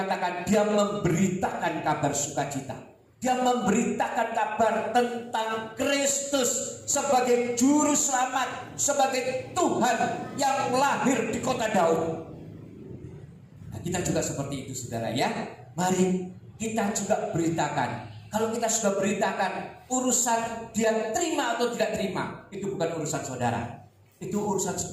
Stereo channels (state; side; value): identical; both; correlation 1.00